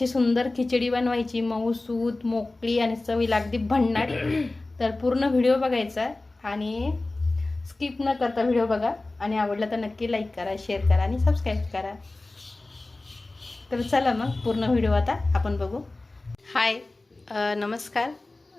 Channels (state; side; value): quieter; right; 3.0 dB